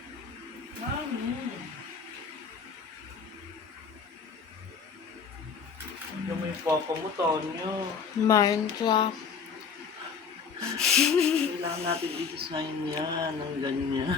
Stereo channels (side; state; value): right; quieter; 6.0 dB